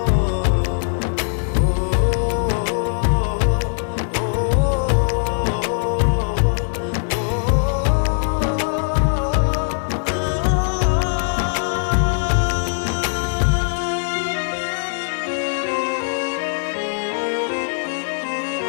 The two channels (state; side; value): silent; right; 62 dB below the other